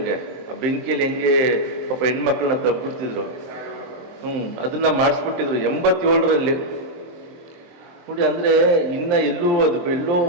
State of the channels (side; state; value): left; late; 23 ms